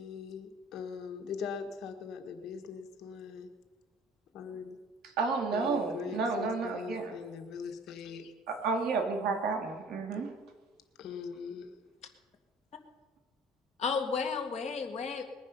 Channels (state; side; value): normal; both; correlation 0.48